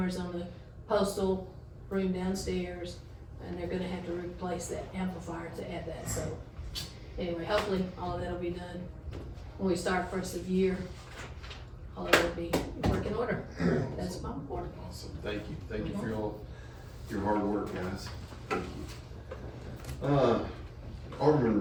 on the postal room downstairs, and they're gonna have to replace that amplifier to add that. So anyway, hopefully all of that'll be done when we start first of year. All of it'll be working order. That's my report. Awesome, thank you for your hard work, guys. Thank you. Alderman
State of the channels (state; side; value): identical; both; correlation 1.00